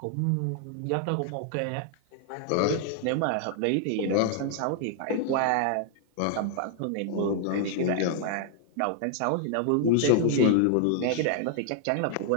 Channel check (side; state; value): both; different; correlation 0.00